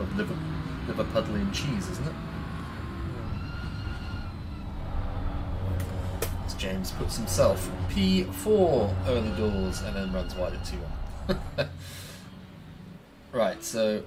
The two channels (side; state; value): both; identical; correlation 1.00